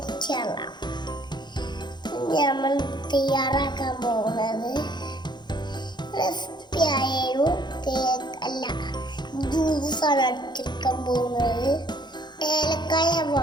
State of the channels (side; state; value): right; late; 0.21 ms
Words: നമ്മൾ തയ്യാറാക്കാൻ പോകുന്നത് റെസിപ്പി ആയൊരു കേക്ക് അല്ല, ജ്യൂസാണ് അടിച്ചെടുക്കാൻ പോകുന്നത്. ഏലക്കായ